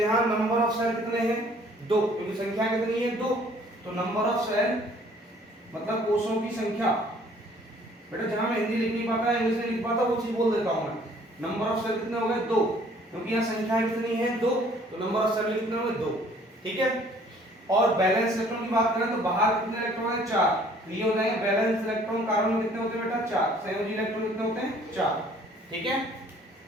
नंबर ऑफ सेल कितने हैं? 2, क्योंकि संख्या कितनी है? 2। तो नंबर ऑफ सेल मतलब कोषों की संख्या, बेटा जहां मैं हिंदी लिख नहीं पाता, इंग्लिश में लिख पाता, वो चीज बोल देता हूं मैं। नंबर ऑफ सेल कितने हो गए? 2, क्योंकि यहाँ संख्या कितनी है? 2, तो नंबर ऑफ सेल कितने हो गए? 2। ठीक है। और बैलेंस इलेक्ट्रॉन की बात करें तो बाहर कितने इलेक्ट्रॉन है? 4। ये हो जाएंगे बैलेंस इलेक्ट्रॉन। कार्बन में कितने होते हैं बेटा? 4। संयोजी इलेक्ट्रॉन कितने होते हैं? 4। ठीक है।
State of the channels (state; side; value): normal; both; correlation 0.57